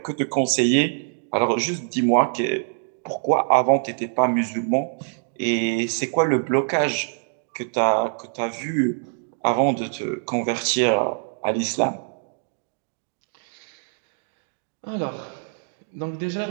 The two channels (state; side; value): silent; left; digital silence